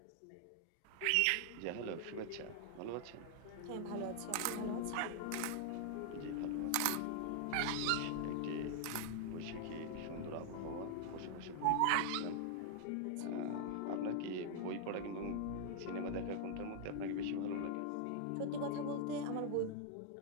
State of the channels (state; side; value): different; both; correlation 0.00